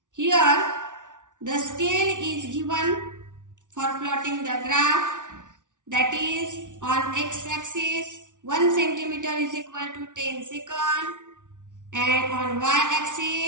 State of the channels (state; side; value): late; left; 0.87 ms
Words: Here, the scale is given for plotting the graph, that is on x-axis 1 centimeter is equal to 10 seconds and on